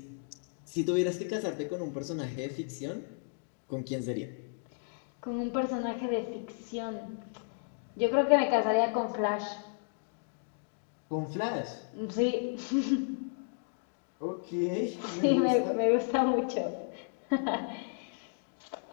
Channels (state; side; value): silent; right; digital silence